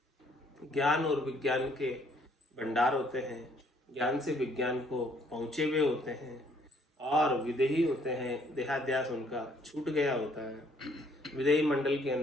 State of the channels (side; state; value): both; normal; correlation 0.65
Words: ज्ञान और विज्ञान के भंडार होते हैं, ज्ञान से विज्ञान को पहुंचे हुए होते हैं। और विदेही होते हैं, देहाध्यास उनका छूट गया होता है, विदेही मंडल के